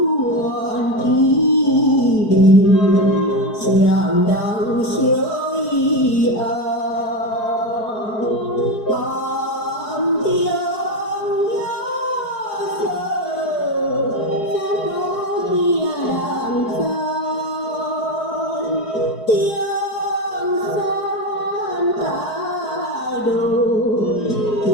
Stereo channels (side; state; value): right; late; 4.7 ms